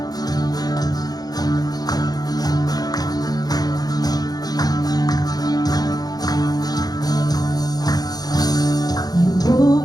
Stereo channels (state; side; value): late; right; 0.19 ms